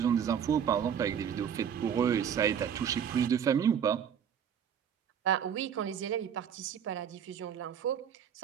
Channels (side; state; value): left; quieter; 8.3 dB